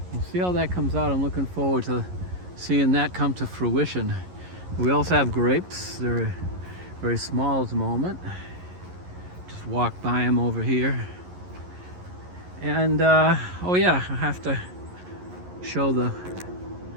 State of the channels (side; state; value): left; late; 11 ms